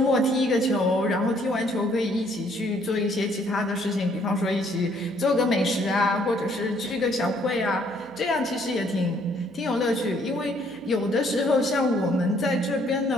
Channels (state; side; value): noise; right; hum, 26 dB below the sound